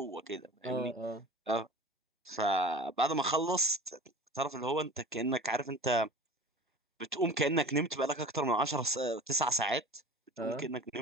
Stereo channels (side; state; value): both; normal; correlation 0.38